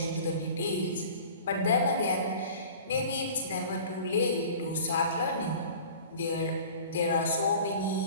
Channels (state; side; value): inverted; both; correlation -0.42